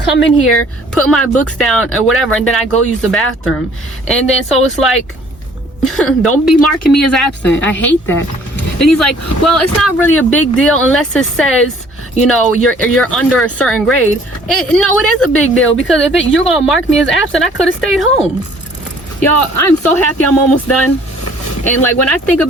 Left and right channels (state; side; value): normal; both; correlation 0.56